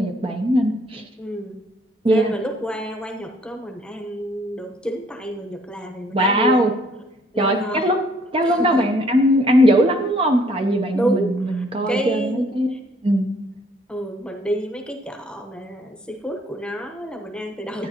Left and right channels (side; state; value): both; normal; correlation 0.63